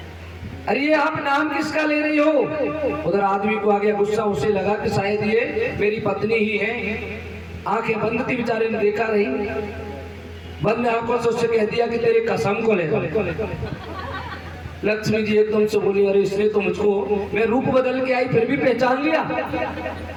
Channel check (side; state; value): both; identical; correlation 1.00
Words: अरे ये आप नाम किसका ले रही हो। उधर आदमी को आ गया गुस्सा, उसे लगा कि शायद ये मेरी पत्नी ही है। आंखें बंद थी, बेचारे ने देखा नहीं, बंद आंखों से उससे कह दिया कि तेरे कसम को ले। लक्ष्मी जी एकदम से बोली अरे इसने तो मुझको, मैं रूप बदल के आई फिर भी पहचान लिया